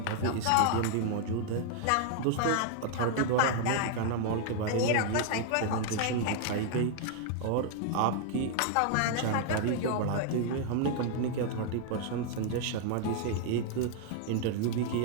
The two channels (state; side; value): different; both; correlation 0.00